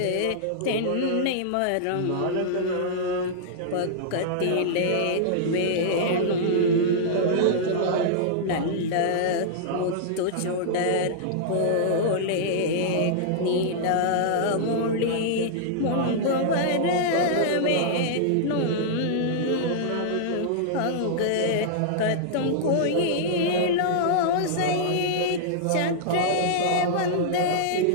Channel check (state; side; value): different; both; correlation -0.02